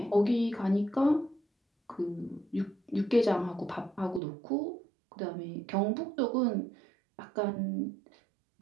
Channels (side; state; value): left; drops out; at 4.2 s